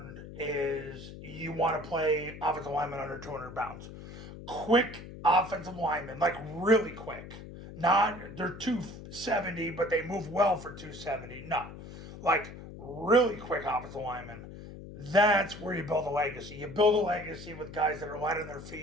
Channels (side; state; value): left; noise; hum, 13 dB below the sound